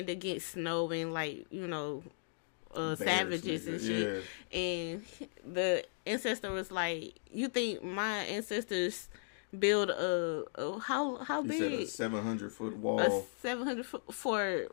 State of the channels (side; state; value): right; silent; digital silence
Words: against snow and, like, savages and shit. Yeah. And the ancestor was like, you think my ancestors build how big? He said a 700-foot wall. 700 foot